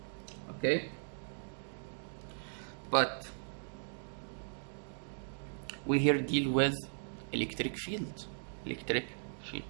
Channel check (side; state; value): left; silent; digital silence